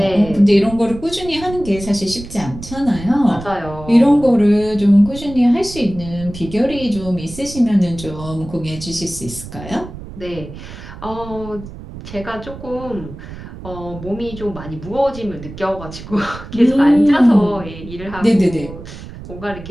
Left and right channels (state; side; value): noise; right; rumble, 13 dB below the sound